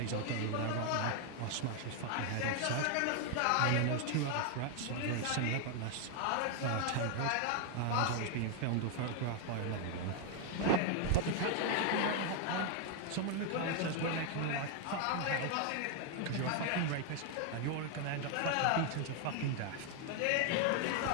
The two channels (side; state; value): both; different; correlation 0.01